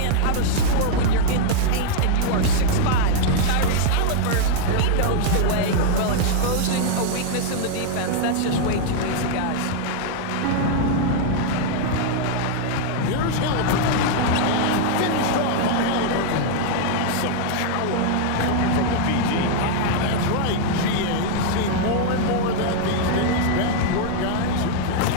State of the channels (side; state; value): both; different; correlation -0.01